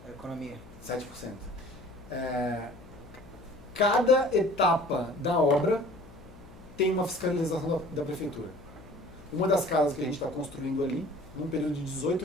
da economia. 7%. Cada etapa da obra tem uma fiscalização da prefeitura. Uma das casas que a gente está construindo ali, num período de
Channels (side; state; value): left; noise; hum, 20 dB below the sound